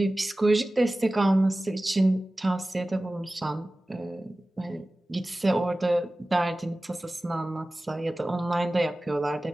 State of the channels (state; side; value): normal; both; correlation 0.97